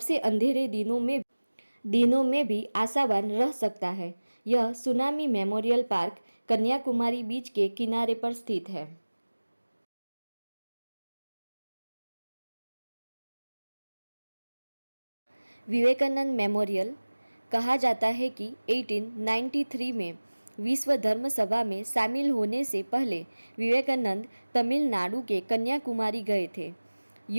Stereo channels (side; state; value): both; inverted; correlation -1.00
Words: अंधेरे दिनों में भी आशावान रह सकता है। यह सुनामी मेमोरियल पार्क कन्याकुमारी बीच के किनारे पर स्थित है। विवेकानंद मेमोरियल। कहा जाता है कि 1893 में विश्व धर्म सभा में शामिल होने से पहले विवेकानंद तमिलनाडु के कन्याकुमारी गए थे।